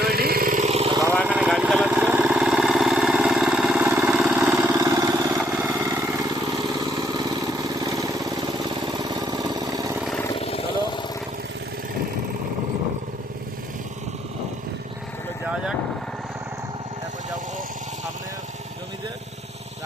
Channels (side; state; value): both; normal; correlation 0.70